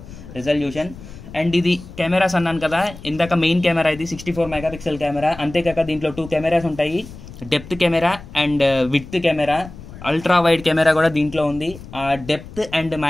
రెజల్యూషన్. అండ్ ఇది కెమెరాస్ అన్నాను కదా ఇందాక, మెయిన్ కెమెరా ఇది 64 MP కెమెరా. అంతేకాక దీంట్లో 2 కెమెరాస్ ఉంటాయి, depth camera and width camera. Ultra wide camera కూడా దీంట్లో ఉంది. ఆ డెప్త్ అండ్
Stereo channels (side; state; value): left; noise; rumble, 16 dB below the sound